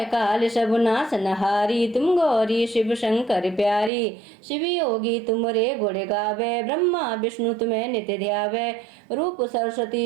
काल सब नासनहारी, तुम गौरी शिव शंकर प्यारी। शिव योगी तुमरे गुण गावे, ब्रह्मा विष्णु तुम्हें नित्य ध्यावे। रूप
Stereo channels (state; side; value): drops out; left; at 3.9 s